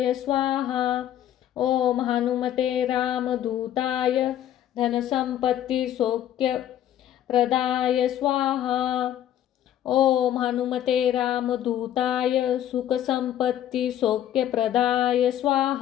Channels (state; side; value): quieter; right; 11.4 dB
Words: स्वाहा। ओम हनुमते रामदूताय धनसंपत्ति सौख्यप्रदाय स्वाहा। ओम हनुमते रामदूताय सुखसंपत्ति सौख्यप्रदाय